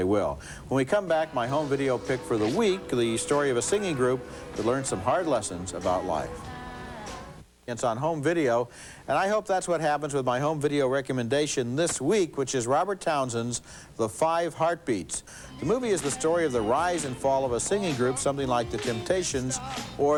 will. When we come back, my home video pick for the week, the story of a singing group that learned some hard lessons about life. It's on home video, and I hope that's what happens with my home video recommendation this week, which is Robert Townsend's The 5 Heartbeats. The movie is the story of the rise and fall of a singing group, something like the Temptations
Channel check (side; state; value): both; identical; correlation 1.00